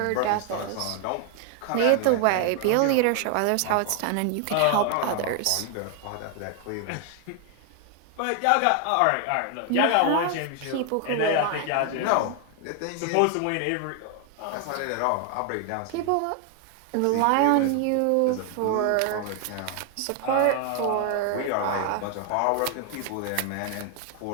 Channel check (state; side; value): different; both; correlation 0.00